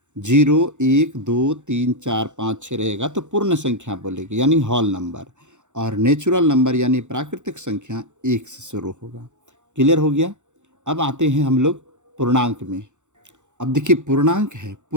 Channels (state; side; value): late; left; 0.84 ms